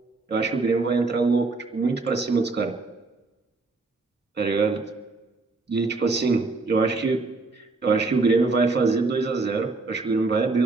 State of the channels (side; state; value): left; quieter; 3.7 dB